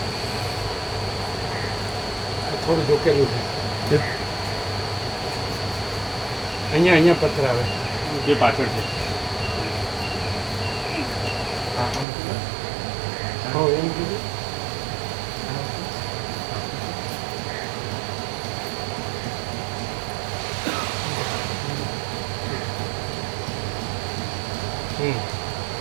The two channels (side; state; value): left; drops out; at 12.1 s